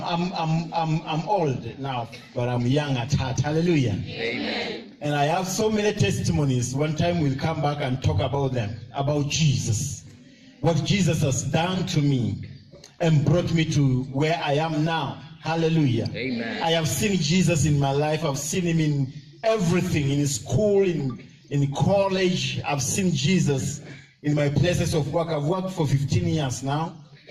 old now, but I'm young at heart. Hallelujah. Amen. And I have so many testimonies. One time we'll come back and talk about them, about Jesus, what Jesus has done to me and brought me to where I am now. Hallelujah. Amen. I have seen Jesus in my life. I've seen him in everything, in school, in college. I've seen Jesus in my places of work. I've worked for 15 years now.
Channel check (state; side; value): identical; both; correlation 1.00